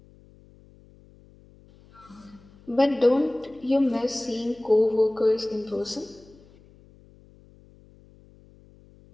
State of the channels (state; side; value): noise; left; hum, 26 dB below the sound